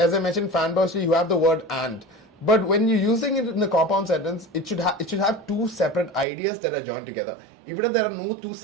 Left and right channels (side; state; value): left; drops out; at 6.2 s